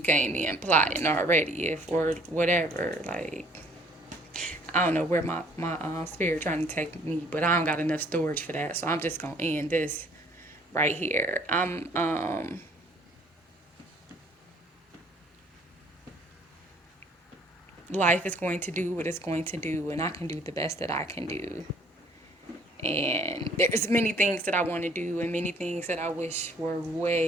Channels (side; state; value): both; normal; correlation 0.58